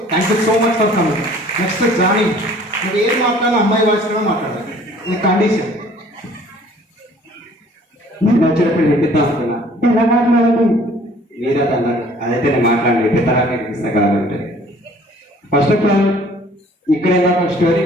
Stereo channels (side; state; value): both; normal; correlation 0.54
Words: Thank you so much for coming. Next Johnny, నువ్వు ఏం మాట్లాడినా అమ్మాయి వాయిస్లో మాట్లాడాలి, ఇది కండిషన్. నేను వచ్చినప్పుడు ఎత్తిద్దాం అనుకున్నా, ఎలా మాట్లాడాలి మీరే అన్నారు. అదైతే నేను మాట్లాడి ఎత్తితరానికి ఇస్తా కాబట్టి ఫస్ట్ ఆఫ్ ఆల్ ఇక్కడ స్టోరీ